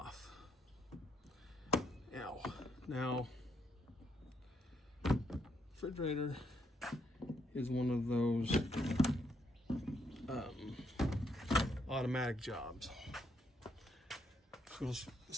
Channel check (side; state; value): both; normal; correlation 0.75